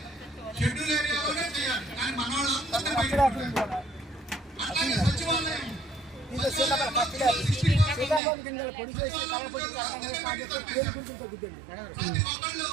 సీతాఫలం గింజలు పొడి చేసి కలపొడి పేరు గురించి తగ్గుతుంది.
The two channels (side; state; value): left; drops out; at 8.2 s